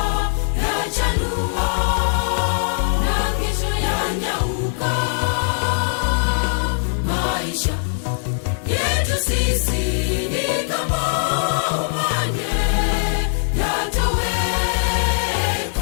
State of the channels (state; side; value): silent; right; 58 dB below the other